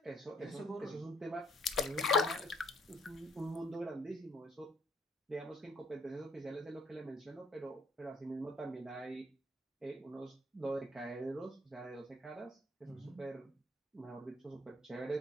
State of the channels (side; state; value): both; normal; correlation 0.64